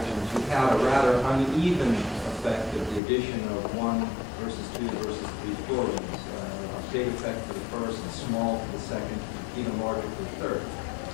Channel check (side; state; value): right; drops out; at 3.0 s